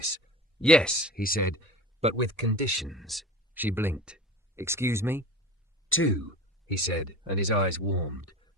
"Yes," he said, "but with conditions." She blinked. "Excuse me?" "2," he said, and his eyes warmed.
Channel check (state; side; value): normal; both; correlation 0.35